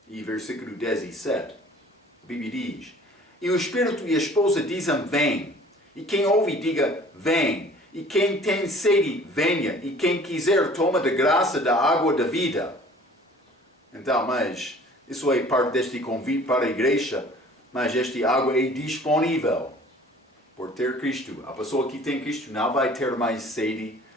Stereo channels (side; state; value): both; normal; correlation 0.50